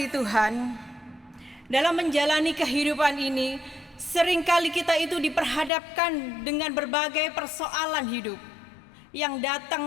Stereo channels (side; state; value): right; drops out; at 5.7 s